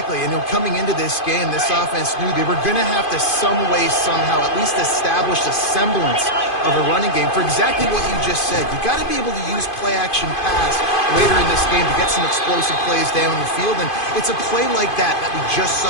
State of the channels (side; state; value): right; late; 2.5 ms